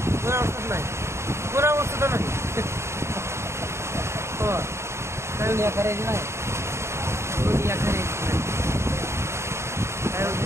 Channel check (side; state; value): left; late; 0.13 ms